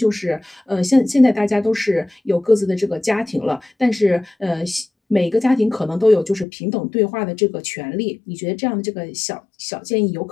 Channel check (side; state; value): right; drops out; at 6.5 s